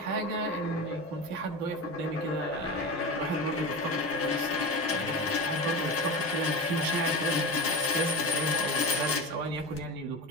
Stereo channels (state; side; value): normal; both; correlation 0.26